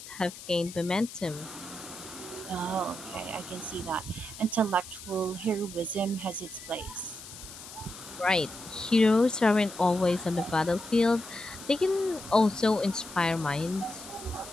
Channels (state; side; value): noise; left; hiss, 14 dB below the sound